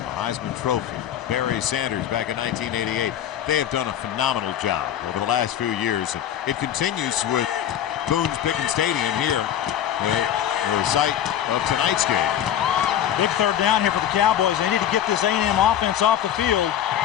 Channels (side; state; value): right; quieter; 10.4 dB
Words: Heisman Trophy. Barry Sanders back in 1988. They have done a phenomenal job over the last few years. And it continues with Boone's Pickens Stadium here, the site of tonight's game. Big third down here for the Cowboys. They need to get this A&M offense off the field.